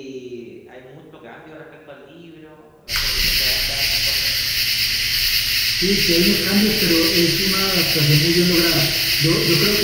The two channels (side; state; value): both; identical; correlation 1.00